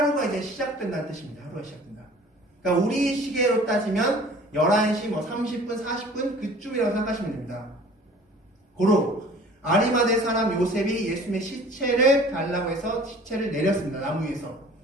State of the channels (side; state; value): both; normal; correlation 0.48